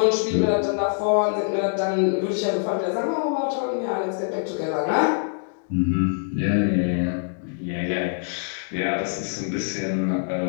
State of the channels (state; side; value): silent; right; digital silence